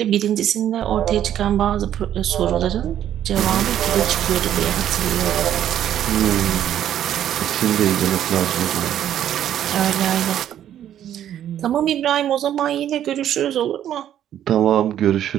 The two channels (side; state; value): left; quieter; 10.9 dB